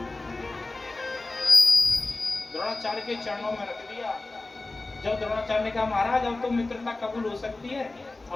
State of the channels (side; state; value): right; quieter; 3.2 dB